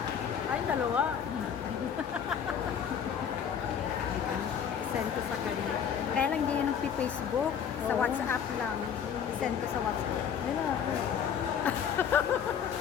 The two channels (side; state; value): right; quieter; 7.9 dB